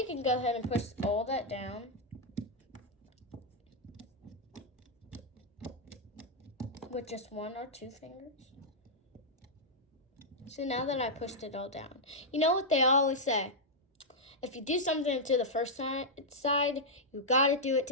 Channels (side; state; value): both; normal; correlation -0.06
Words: can go ahead and push all that down. With just 1 or 2 fingers. So now that I pushed it all down, you know what they always say? if you do something to the first side, you gotta do it